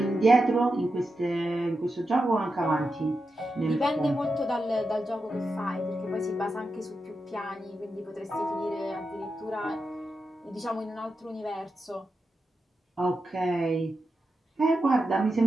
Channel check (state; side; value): normal; both; correlation 0.88